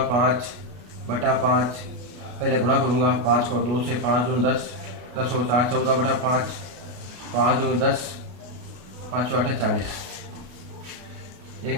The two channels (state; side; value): late; left; 33 ms